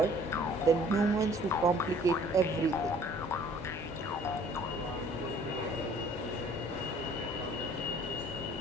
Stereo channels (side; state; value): both; normal; correlation 0.54